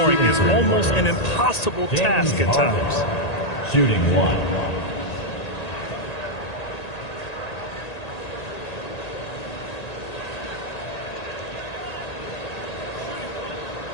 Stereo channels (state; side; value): late; right; 1.9 ms